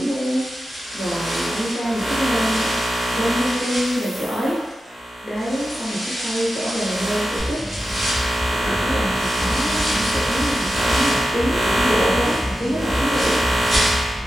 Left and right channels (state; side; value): normal; both; correlation 0.92